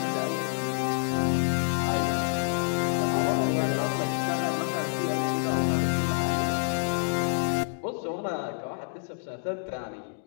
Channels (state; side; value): silent; right; digital silence